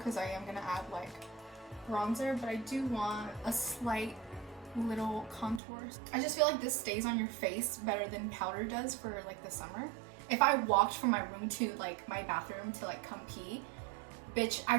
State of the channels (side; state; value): left; drops out; at 5.6 s